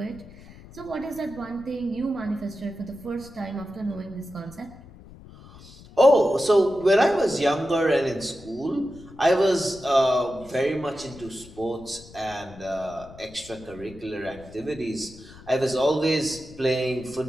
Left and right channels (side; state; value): left; noise; rumble, 19 dB below the sound